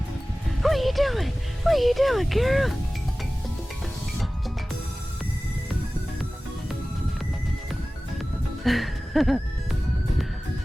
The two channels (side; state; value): both; normal; correlation 0.97